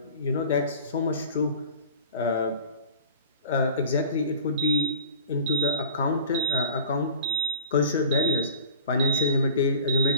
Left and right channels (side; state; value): both; inverted; correlation -0.42